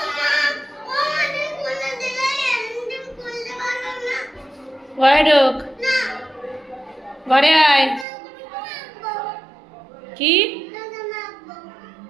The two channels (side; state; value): left; drops out; at 8.1 s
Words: ঘরে ঢোক, ঘরে আয়। কি